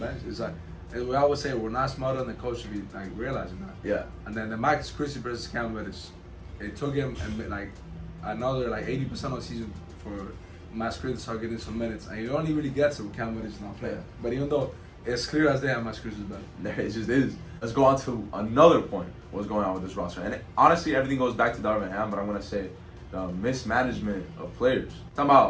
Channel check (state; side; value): identical; both; correlation 1.00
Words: It's like, we always say we're not smarter than the coach should be like realizing that. Yeah. And then the Max Christie versus Cam Reddish, it took him like another like 80% of the season for Max Christie to start getting some minutes, and he only really gets it when Cam Reddish is not playing. Yeah. But even though It's clear as day how much Chris is better. It just is. Let's go on to another point. What's going on with this roster? And honestly, everything goes back to Darvin Ham, but I'm gonna say the mismanagement of players. Talking